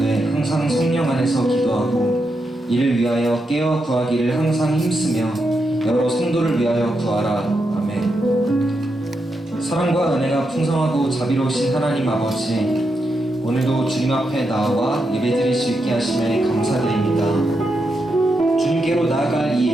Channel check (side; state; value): both; normal; correlation 0.84